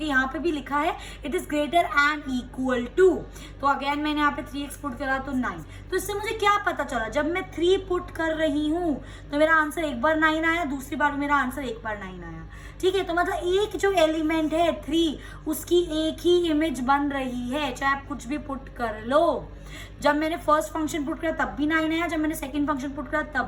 यहाँ पे भी लिखा है it is greater and equal to, तो अगेन मैंने यहाँ पे 3x पुट करा तो 9. तो इससे मुझे क्या पता चला, जब मैं 3 पुट कर रही हूँ तो मेरा आंसर एक बार 9 आया, दूसरी बार मेरा आंसर एक बार 9 आया. ठीक है, तो मतलब एक जो एलिमेंट है 3 उसकी एक ही इमेज बन रही है, चाहे आप कुछ भी पुट कर लो. जब मैंने फर्स्ट फंक्शन पुट करा तब भी 9 आया, जब मैंने सेकंड फंक्शन पुट करा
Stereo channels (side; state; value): both; identical; correlation 1.00